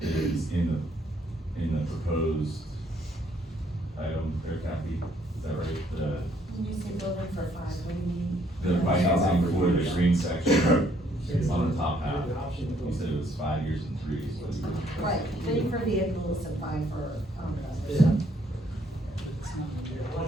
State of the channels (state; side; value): normal; both; correlation 0.67